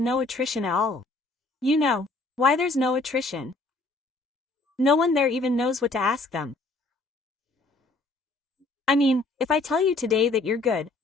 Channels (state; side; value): quieter; right; 3.2 dB